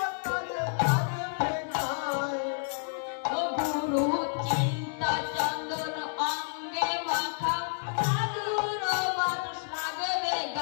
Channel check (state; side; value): silent; right; digital silence